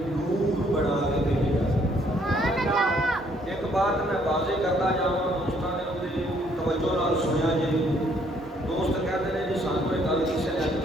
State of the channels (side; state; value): both; normal; correlation 0.66